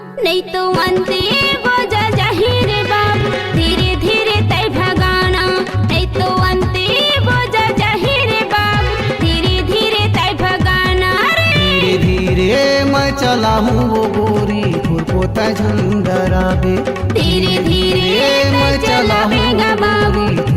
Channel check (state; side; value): identical; both; correlation 1.00